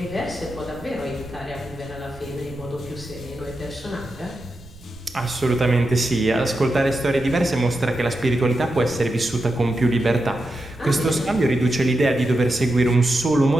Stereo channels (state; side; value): noise; right; rumble, 20 dB below the sound